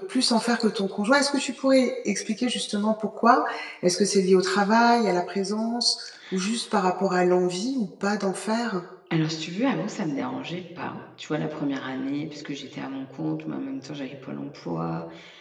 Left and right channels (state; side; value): identical; both; correlation 1.00